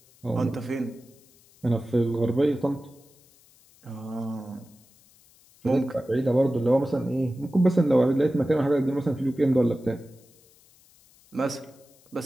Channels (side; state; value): left; noise; hiss, 29 dB below the sound